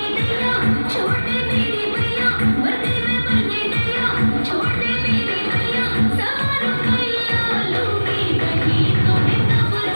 गया, छोटे मेरे भैया, वर्दी में बने गया, छोटे मेरे भैया, सवारों भैया लूंगी, कहीं तुम्हें तब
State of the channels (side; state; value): both; inverted; correlation -1.00